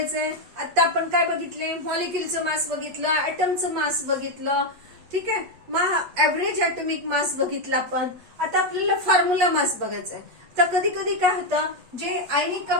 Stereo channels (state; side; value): late; left; 8.2 ms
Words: आता आपण काय बघितले, मॉलिक्युलचं मास बघितलं, ऍटमचं मास बघितलं, ठीक आहे. मग ऍव्हरेज ऍटॉमिक मास बघितला आपण. आता आपल्याला फॉर्म्युला मास बघायचा आहे. तर कधी कधी काय होतं, जे आयनिक